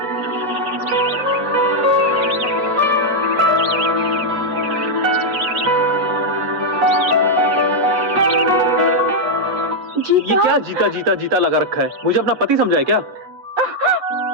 ये क्या जीता जीता जीता लगा रखा है? मुझे अपना पति समझा है क्या?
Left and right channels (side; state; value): left; late; 8.0 ms